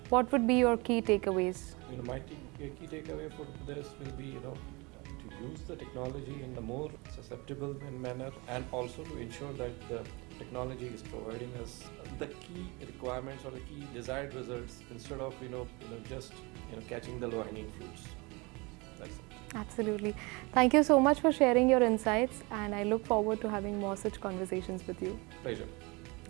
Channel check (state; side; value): quieter; left; 26.6 dB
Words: what would be your key takeaways? My key takeaway for this will be to use the technology in a more susceptible manner, and also to ensure that the technology is providing us the key requirements or the key desired results, instead of just catching the low-hanging fruits. That's it. Absolutely. Thank you so much for sharing your insights, and I look forward to having more such conversations with you. Pleasure.